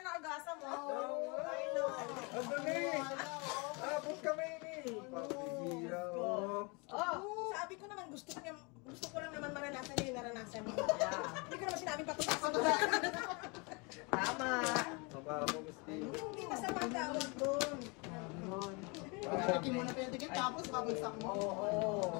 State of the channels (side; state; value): right; quieter; 30.2 dB